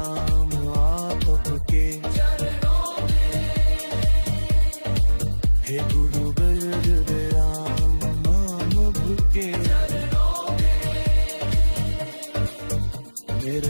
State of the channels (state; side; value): inverted; both; correlation -1.00